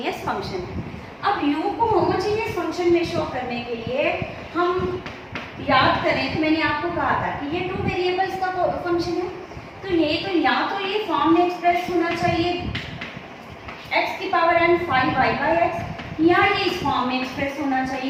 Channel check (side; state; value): both; identical; correlation 1.00